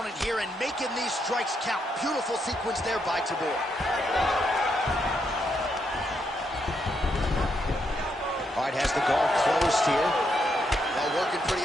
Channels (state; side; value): normal; both; correlation 0.79